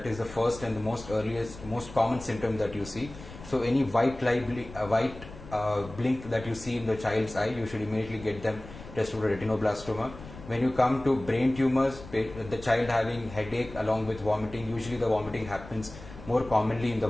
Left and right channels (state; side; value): noise; left; rumble, 15 dB below the sound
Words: is the first and the most common symptom that you see. So any white blink that you see in the child's eye, you should immediately get them tested for retinoblastoma. When you come to brain tumors, the child having headache along with vomiting, usually the vomiting happens more commonly in the